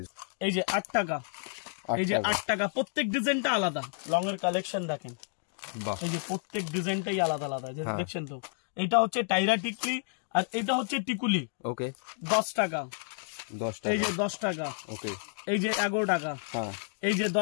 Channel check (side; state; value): right; silent; 57 dB below the other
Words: এই যে 8 টাকা, এই যে 8 টাকা, প্রত্যেক ডিজাইনটা আলাদা। লং এর কালেকশন দেখেন, এই যে প্রত্যেক ডিজাইনটাই আলাদা আলাদা, দেখছেন তো। এটা হচ্ছে টাইরা টিকলি, আর এটা হচ্ছে টিকুলি। ওকে, 10 টাকা, এই যে 10 টাকা, ওকে, এই যে 11 টাকা, এই যে